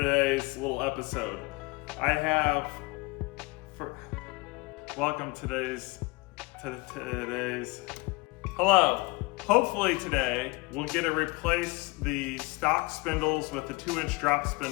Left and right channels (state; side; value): quieter; right; 25.6 dB